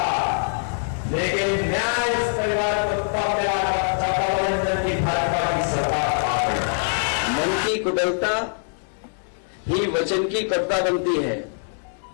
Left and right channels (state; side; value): silent; right; 63 dB below the other